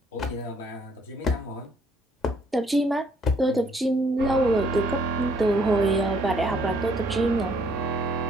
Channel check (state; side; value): normal; both; correlation 0.65